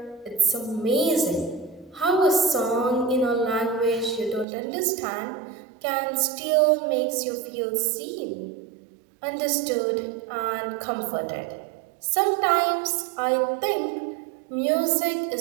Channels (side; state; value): left; drops out; at 4.5 s